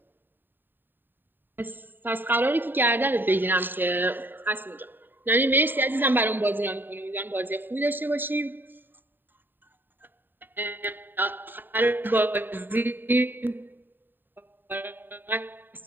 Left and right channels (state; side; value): late; left; 0.093 ms